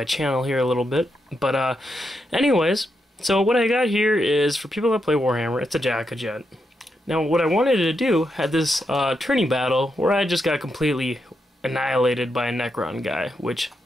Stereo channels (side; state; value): both; normal; correlation 0.83